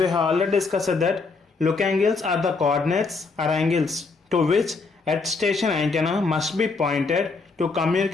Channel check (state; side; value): quieter; right; 4.2 dB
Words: have already discussed that look angles are the coordinates or angles to which earth station antenna must be pointed to